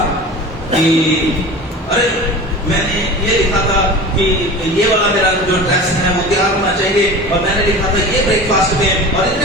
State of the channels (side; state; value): both; normal; correlation 0.35